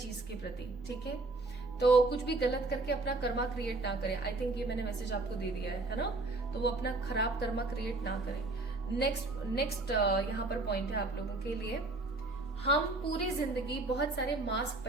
के प्रति, ठीक है। तो कुछ भी गलत करके अपना कर्मा क्रिएट ना करें। आई थिंक ये मैंने मैसेज आपको दे दिया है ना। तो वो अपना खराब कर्मा क्रिएट ना करें। नेक्स्ट यहाँ पर पॉइंट है आप लोगों के लिए, हम पूरी जिंदगी बहुत सारे मास्क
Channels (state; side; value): quieter; left; 3.2 dB